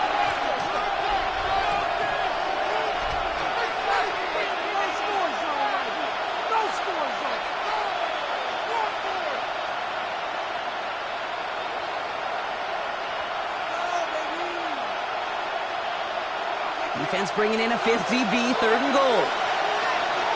Defense bringing in a 5th DB, 3rd and goal.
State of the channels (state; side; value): identical; both; correlation 1.00